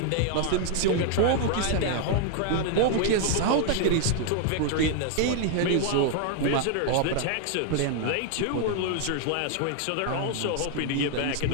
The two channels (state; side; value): different; both; correlation 0.00